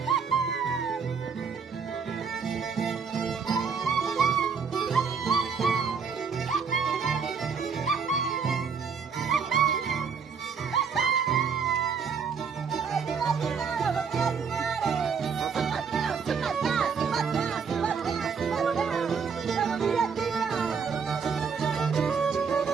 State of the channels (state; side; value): quieter; left; 6.0 dB